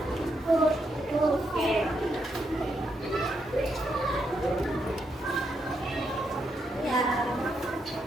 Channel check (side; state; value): both; normal; correlation 0.80